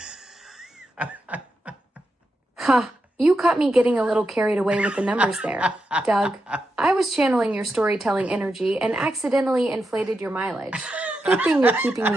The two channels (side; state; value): both; normal; correlation 0.87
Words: Ha! You caught me getting a little carried away with the numbers there, Doug. I was channeling your storytelling energy and accidentally inflated your mileage. Good thing you're keeping